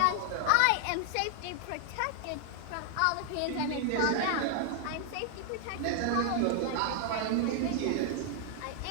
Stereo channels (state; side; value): different; both; correlation 0.00